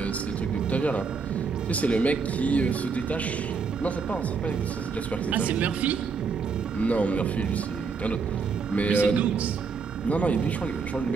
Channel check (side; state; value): left; quieter; 5.2 dB